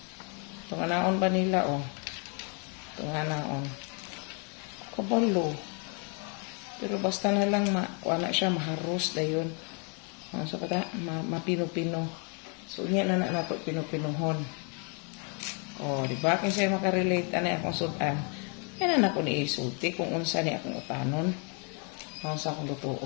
Itong naon ba nila Itong naon. Kabalo. Pero basta na lang na siya maharos dayon. So kata mapino-pino. So unya na nato pino-pinuhon. Di ba kin siya makarelate ani akong sudan. Yan na ako ni isulti kung unsa ni akong utanon. Unsa akong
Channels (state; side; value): quieter; right; 37.2 dB